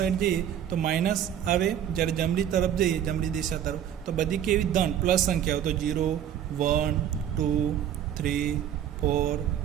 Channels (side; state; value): left; quieter; 10.0 dB